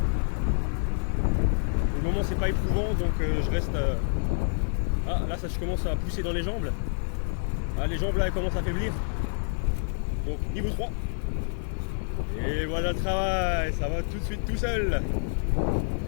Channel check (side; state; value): right; silent; digital silence